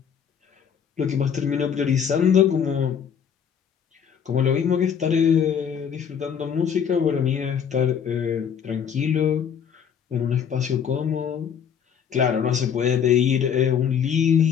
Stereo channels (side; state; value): right; quieter; 7.7 dB